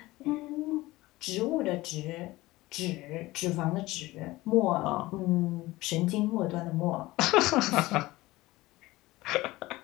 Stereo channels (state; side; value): quieter; right; 19.0 dB